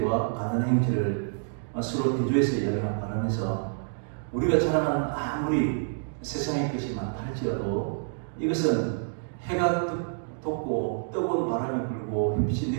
가난한 형제를 서로 대조해서 이야기하면서 우리가 자랑하는 아무리 세상의 것이 많다 할지라도 이것은 해가 돋고 뜨거운 바람이 불고 햇빛이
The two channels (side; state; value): left; silent; digital silence